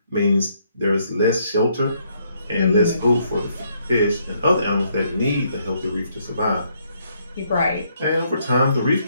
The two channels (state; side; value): inverted; both; correlation -0.71